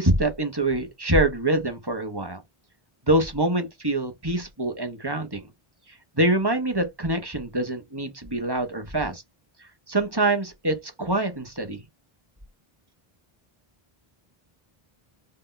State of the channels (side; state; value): left; late; 1.1 ms